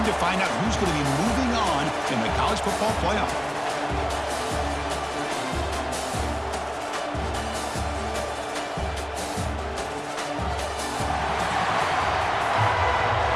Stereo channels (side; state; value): both; identical; correlation 1.00